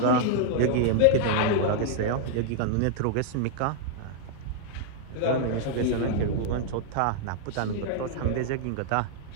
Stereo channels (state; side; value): different; both; correlation -0.01